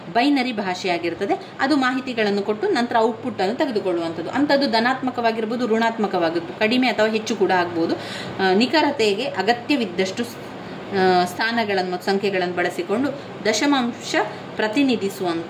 ಬೈನರಿ ಭಾಷೆಯಾಗಿರ್ತದೆ. ಅದು ಮಾಹಿತಿಗಳನ್ನು ಕೊಟ್ಟು ನಂತರ ಔಟ್ಪುಟ್ ಅನ್ನು ತೆಗೆದುಕೊಳ್ಳುವಂಥದ್ದು. ಅಂಥದ್ದು ಧನಾತ್ಮಕವಾಗಿರ್ಬೋದು, ಋಣಾತ್ಮಕವಾಗಿರ್ಬೋದು, ಕಡಿಮೆ ಅಥವಾ ಹೆಚ್ಚು ಕೂಡ ಆಗ್ಬೋದು. ನಿಖರತೆಗೆ ಅಗತ್ಯವಿದ್ದಷ್ಟು ಸ್ಥಾನಗಳನ್ನು ಮತ್ತು ಸಂಖ್ಯೆಗಳನ್ನು ಬಳಸಿಕೊಂಡು ದಶಮಾಂಶ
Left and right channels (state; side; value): identical; both; correlation 1.00